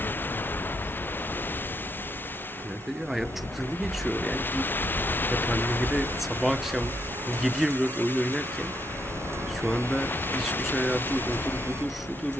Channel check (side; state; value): both; normal; correlation 0.76